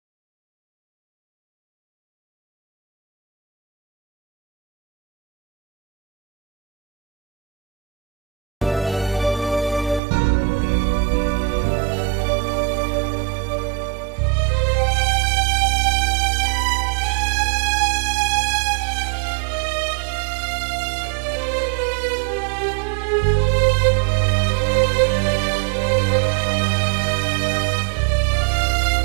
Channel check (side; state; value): left; drops out; at 10.0 s